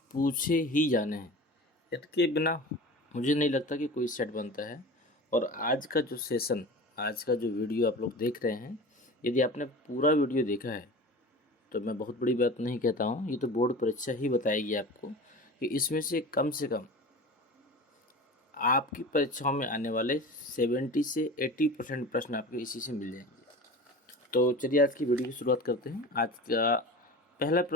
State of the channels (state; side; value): normal; both; correlation 0.35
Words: पूछे ही जाने हैं। इनके बिना मुझे नहीं लगता कि कोई सेट बनता है। और आज का जो सेशन, आज का जो वीडियो आप लोग देख रहे हैं, यदि आपने पूरा वीडियो देखा है तो मैं बहुत बड़ी बात नहीं कहता हूँ, ये तो बोर्ड परीक्षा ही बताएगी आपको कि इसमें से कम आपकी परीक्षाओं में आने वाले 70 से 80% प्रश्न आपके इसी से मिल जाएंगे। तो चलिए आज की वीडियो की शुरुआत करते हैं। आज का पहला